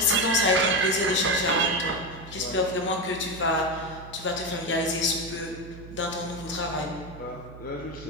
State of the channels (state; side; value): noise; right; hum, 15 dB below the sound